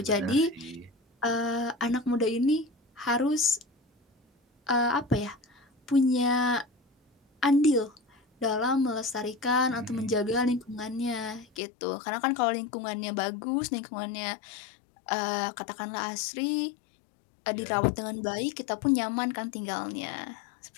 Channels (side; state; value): right; drops out; at 11.6 s